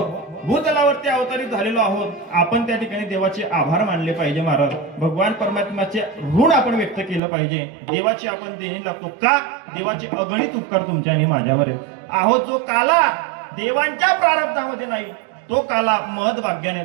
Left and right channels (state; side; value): drops out; left; at 7.2 s